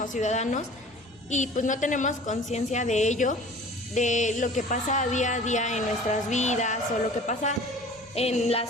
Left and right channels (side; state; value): both; normal; correlation 0.44